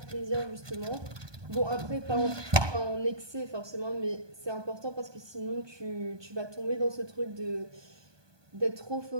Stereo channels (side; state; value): left; late; 1.2 ms